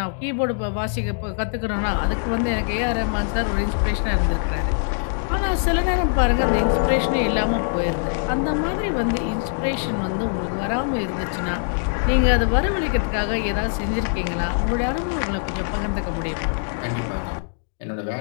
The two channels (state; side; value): silent; right; digital silence